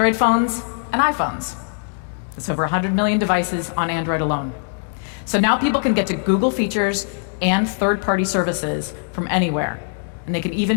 phones and iPhones. There's over 100 million devices on Android alone. So now people can get to Google features and third-party services from anywhere, and they can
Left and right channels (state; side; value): silent; right; digital silence